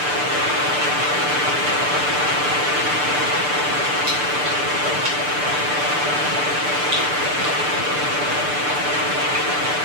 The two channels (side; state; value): left; late; 6.8 ms